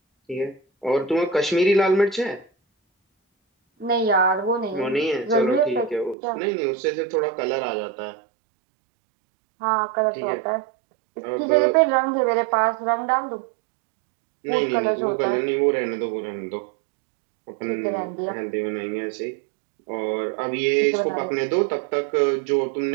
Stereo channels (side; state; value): left; drops out; at 6.2 s